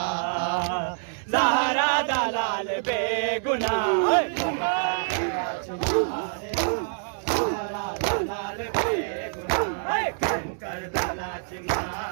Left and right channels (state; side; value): silent; left; 61 dB below the other